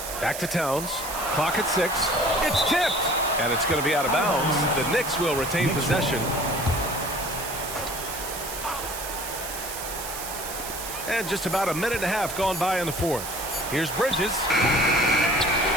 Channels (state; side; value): noise; right; hiss, 8 dB below the sound